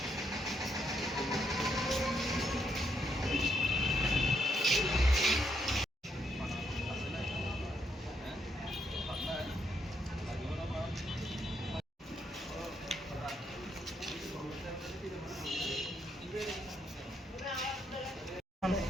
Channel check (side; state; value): both; normal; correlation 0.77